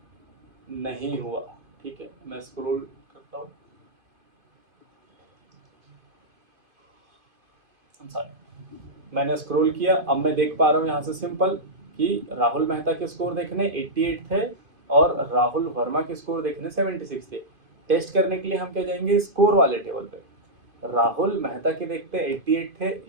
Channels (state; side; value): late; left; 2.5 ms